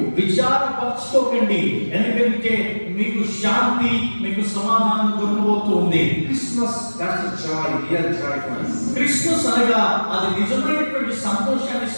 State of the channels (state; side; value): inverted; both; correlation -1.00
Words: విచారపరచుకోకండి, ఎందుకంటే మీకు శాంతి, మీకు సమాధానం దొరకబోతూ ఉంది. Christmas, that's a joy, real joy for us. Christmas అనగా అది నిజమైనటువంటి సంతోషాన్ని